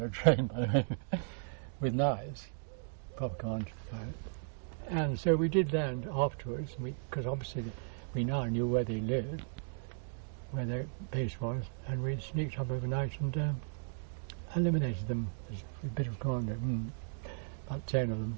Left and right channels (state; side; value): silent; left; digital silence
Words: trained, by the way, with knives, proper commando. And so we did land afterwards, because obviously we now knew where they lived, where their base was, and we sneaked up overnight and eliminated them as a bit of commando. About 10 of